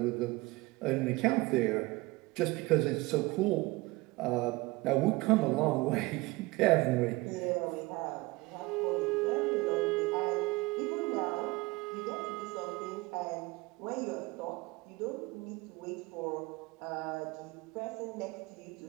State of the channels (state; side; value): quieter; left; 22.3 dB